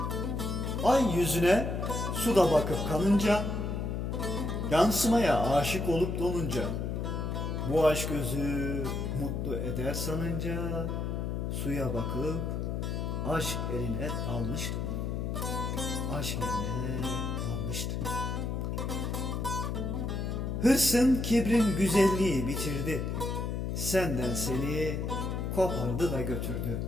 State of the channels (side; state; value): left; noise; hum, 2 dB below the sound